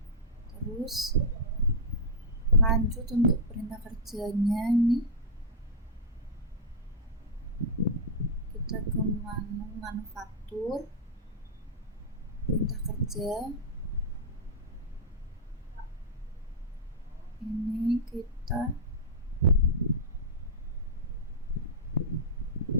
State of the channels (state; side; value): normal; both; correlation -0.07